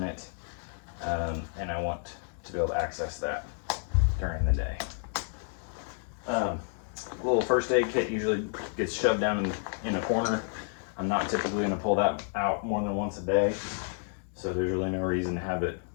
it, and I want to be able to access that during the day. Little first aid kit usually gets shoved down in a corner. I'm not typically going to pull that out more than once a day, so there's really no reason to have it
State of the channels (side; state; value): right; silent; 58 dB below the other